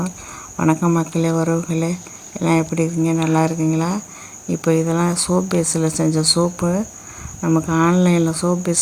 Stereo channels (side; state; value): both; identical; correlation 1.00